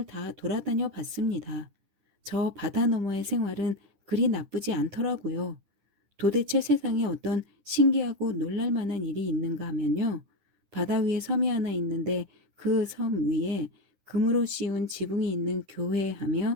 다 돌아다녀 봤습니다. 저 바다 너머의 생활은 그리 나쁘지 않더라고요. 도대체 세상에 어떤 신기하고 놀랄 만한 일이 있는가 하면요. 바다 위에 섬이 하나 있는데 그 섬 위에 금으로 씌운 지붕이 있는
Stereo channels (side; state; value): left; late; 10 ms